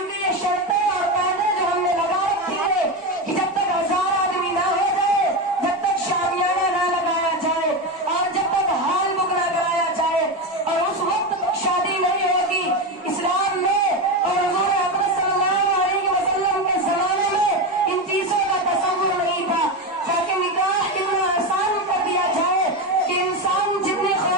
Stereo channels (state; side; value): normal; both; correlation 0.15